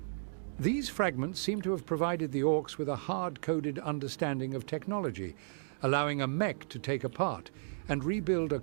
These fragments seem to have provided the orcs with a hard-coded understanding of technology, allowing a mech to take apart and rebuild a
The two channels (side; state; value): left; silent; digital silence